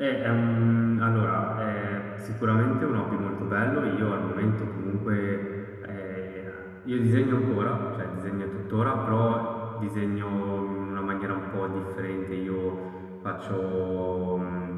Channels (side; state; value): both; identical; correlation 1.00